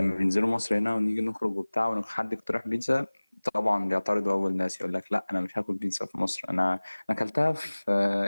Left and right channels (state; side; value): inverted; both; correlation -1.00